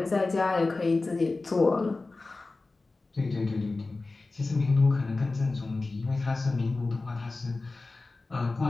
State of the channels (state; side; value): quieter; right; 3.5 dB